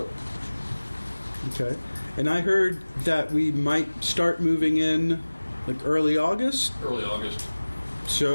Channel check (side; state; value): both; inverted; correlation -1.00